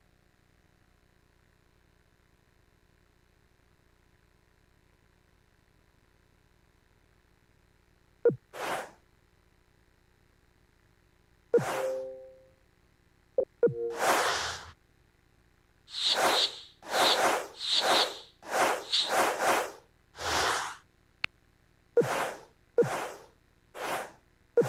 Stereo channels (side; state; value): both; identical; correlation 1.00